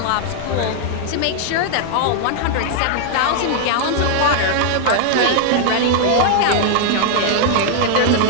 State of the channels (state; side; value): different; both; correlation 0.00